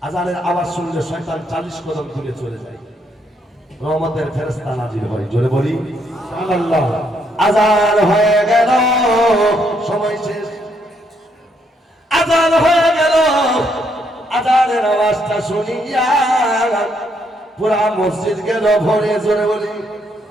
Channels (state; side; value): normal; both; correlation 0.73